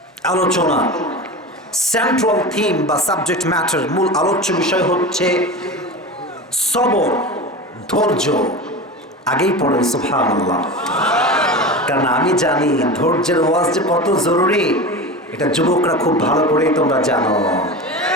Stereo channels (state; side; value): normal; both; correlation 0.28